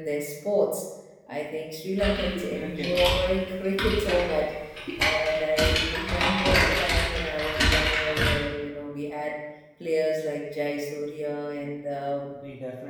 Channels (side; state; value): both; identical; correlation 1.00